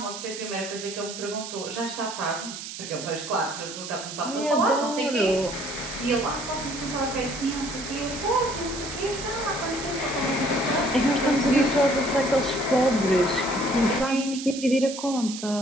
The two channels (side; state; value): right; noise; hiss, 9 dB below the sound